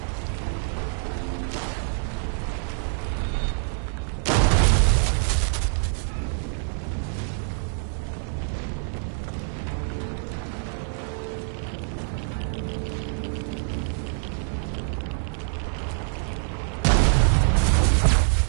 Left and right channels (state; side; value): silent; left; 61 dB below the other